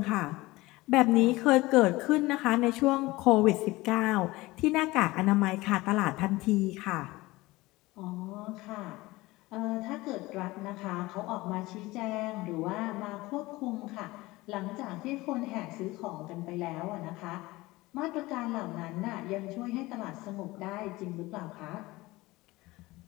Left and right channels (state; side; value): quieter; right; 20.2 dB